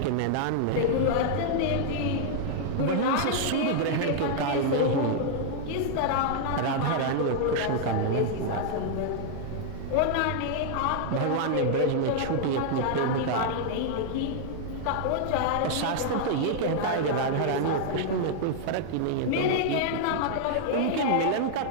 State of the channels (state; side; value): different; both; correlation -0.01